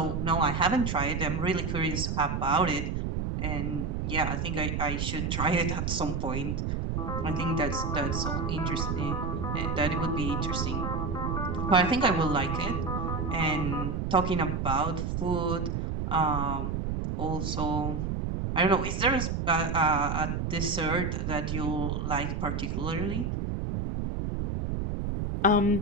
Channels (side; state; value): right; noise; rumble, 1 dB below the sound